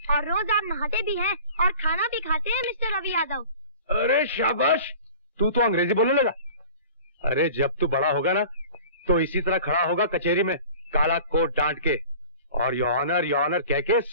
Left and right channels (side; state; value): both; inverted; correlation -0.43